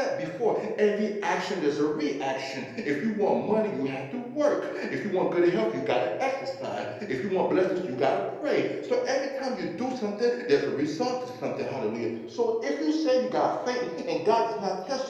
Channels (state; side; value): identical; both; correlation 1.00